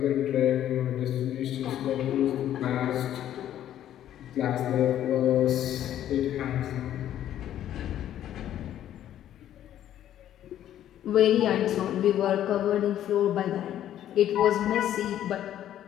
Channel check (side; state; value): right; quieter; 11.5 dB